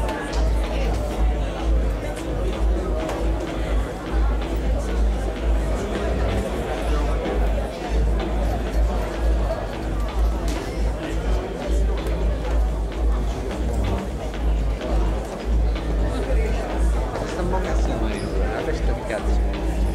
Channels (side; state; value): both; identical; correlation 1.00